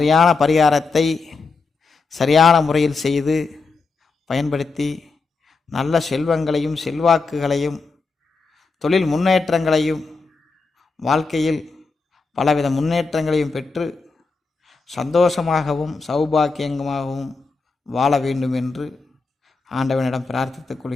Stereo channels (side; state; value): right; quieter; 4.2 dB